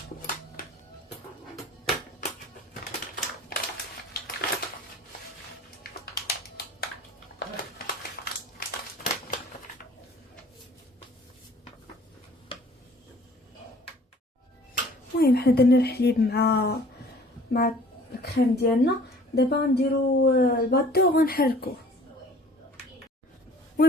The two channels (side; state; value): both; normal; correlation 0.51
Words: المهم حنا درنا الحليب مع الكريم ديالنا. دابا غنديرو الباطو وغنحركوه.